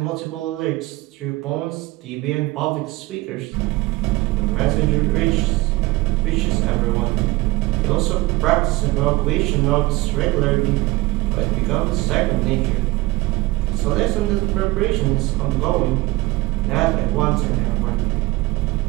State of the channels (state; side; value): quieter; left; 19.8 dB